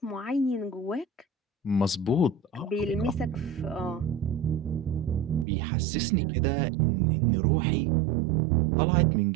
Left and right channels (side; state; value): left; drops out; at 5.5 s